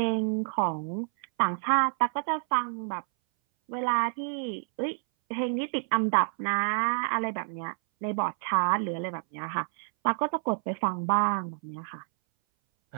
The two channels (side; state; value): left; silent; 59 dB below the other